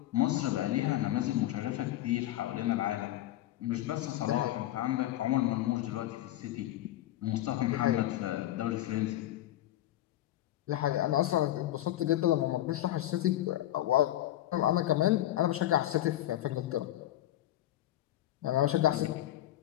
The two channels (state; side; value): quieter; right; 14.1 dB